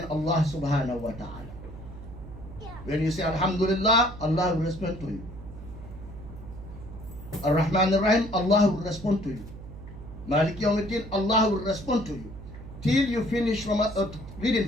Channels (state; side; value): noise; right; hum, 14 dB below the sound